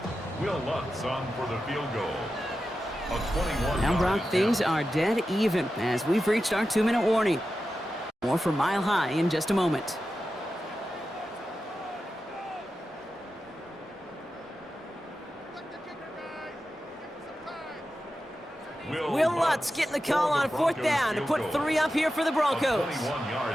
Will Lutz on for the field goal. A 21. Now, Brock, things are dead even as we've reached our 2-minute warning. More for Mile High in just a moment. Will Lutz getting the call on 4th down to put 3 up here for the Broncos.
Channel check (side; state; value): both; normal; correlation 0.91